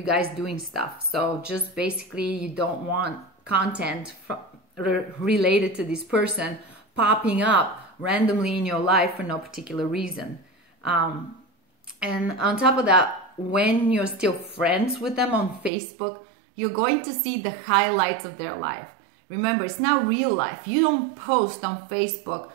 guys doing stuff. So just basically you don't want content related to this person popping up randomly in your life for no particular reason. And on top of that, when you're still friends with them on Facebook, you're going to see the highlights of their life. Remember, it's not real life. You don't post on Facebook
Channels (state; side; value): drops out; left; at 15.7 s